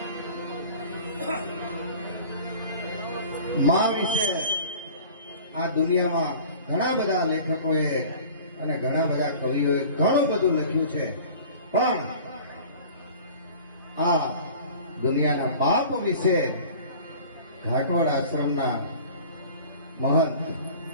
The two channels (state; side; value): inverted; both; correlation -0.43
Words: માં વિશે આ દુનિયામાં ઘણા બધા લેખકોએ અને ઘણા બધા કવિઓએ ઘણું બધું લખ્યું છે, પણ આ દુનિયાના બાપ વિશે ઘાટવાડ આશ્રમના મહંત